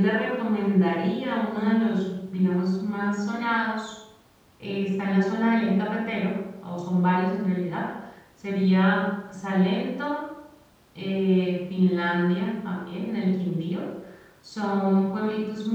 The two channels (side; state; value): both; identical; correlation 1.00